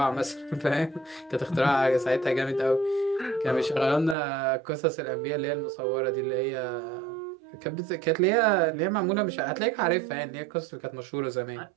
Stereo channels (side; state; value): left; drops out; at 4.2 s